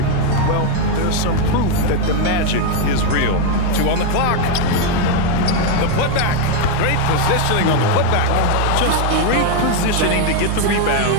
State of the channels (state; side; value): different; both; correlation 0.01